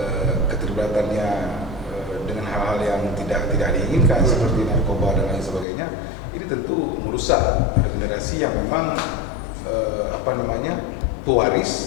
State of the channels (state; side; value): drops out; right; at 5.7 s